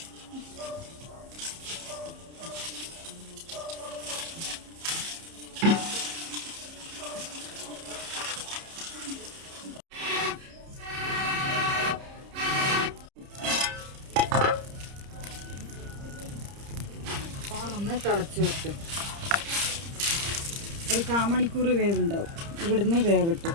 ഒന്ന് തിളച്ച് വരട്ടെ. ഒരു 1/4 മണിക്കൂർ വേവുണ്ടാവും. ഇവിടുന്ന് വേവിട്ട്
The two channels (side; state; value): left; late; 30 ms